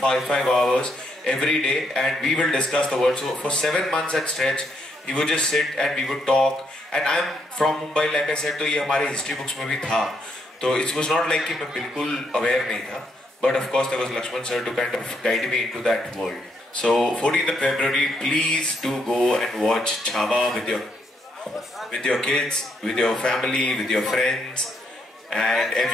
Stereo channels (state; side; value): normal; both; correlation 0.75